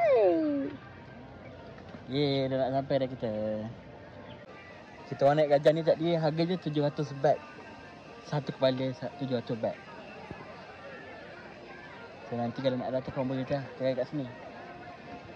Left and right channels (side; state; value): both; identical; correlation 1.00